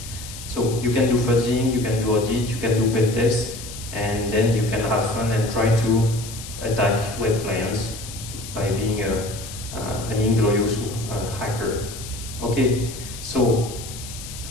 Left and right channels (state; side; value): noise; left; hiss, 12 dB below the sound